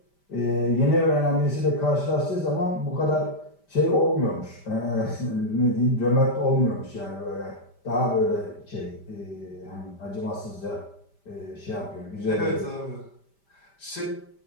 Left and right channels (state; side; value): late; right; 5.1 ms